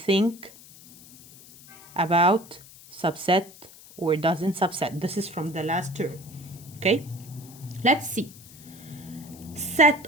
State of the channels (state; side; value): noise; left; hiss, 20 dB below the sound